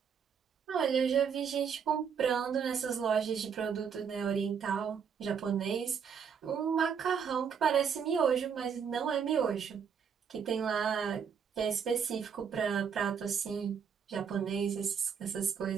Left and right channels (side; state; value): left; quieter; 7.0 dB